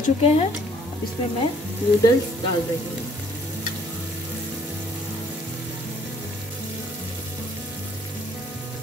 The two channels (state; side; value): normal; both; correlation 0.61